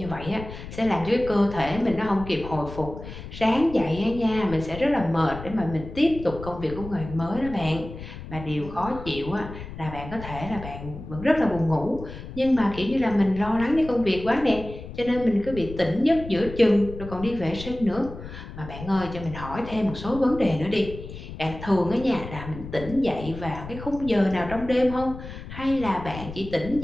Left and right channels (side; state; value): left; noise; rumble, 12 dB below the sound